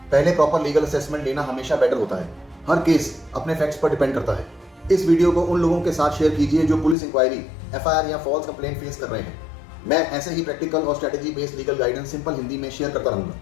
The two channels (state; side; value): drops out; right; at 7.0 s